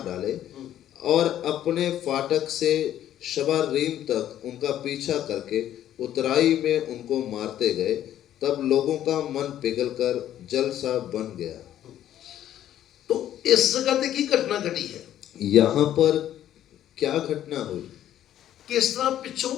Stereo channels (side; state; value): right; quieter; 11.6 dB